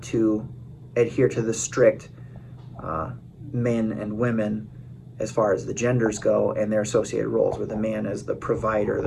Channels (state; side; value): identical; both; correlation 1.00